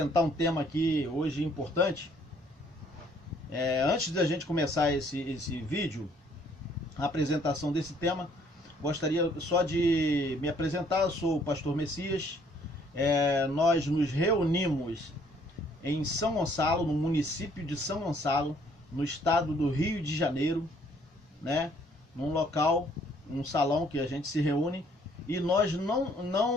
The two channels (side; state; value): both; normal; correlation 0.63